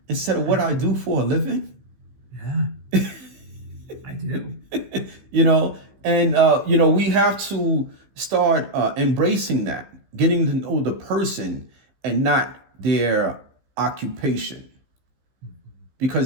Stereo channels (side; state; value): left; late; 15 ms